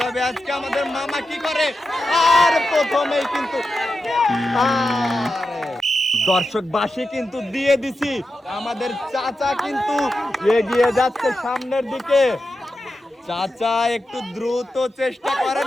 আজকে আমাদের মামা কি করে। আর প্রথমেই কিন্তু দর্শক বাসি কিন্তু দিয়ে দিছি, আমাদের চাচা কিন্তু এগিয়ে যাচ্ছে সামনের দিকে। চাচা একটু দ্রুত চেষ্টা করেন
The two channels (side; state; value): both; normal; correlation 0.90